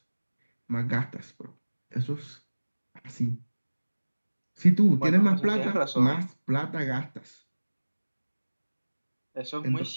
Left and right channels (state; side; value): inverted; both; correlation -1.00